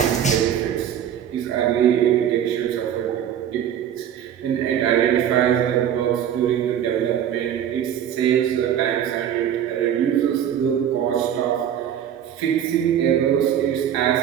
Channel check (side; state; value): left; quieter; 9.7 dB